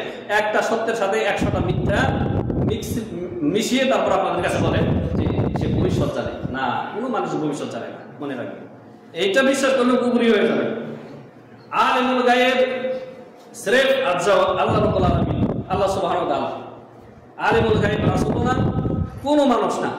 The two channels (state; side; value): identical; both; correlation 1.00